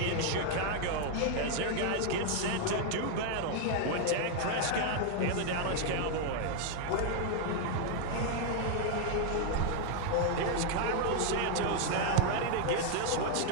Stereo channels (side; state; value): both; different; correlation 0.00